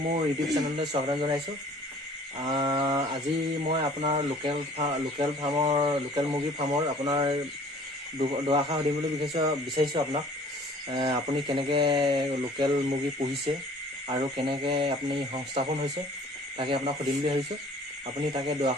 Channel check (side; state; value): both; normal; correlation 0.51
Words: মোৰ ইউটিউব চেনেললৈ স্বাগতম জনাইছোঁ। আজি মই আপোনাৰ লোকেল মুৰ্গী ফাৰ্মৰ আপোনাৰ দুআষাৰ সুধিম বুলি বিচাৰিছোঁ আপোনাক। আপুনি কেনেকৈ লোকেল মুৰ্গী পুহিছে আৰু কেনেকৈ আপুনি সংস্থাপন হৈছে, তাকে আপোনাক সুধিম বুলি ভাবিছোঁ। আপুনি তাকে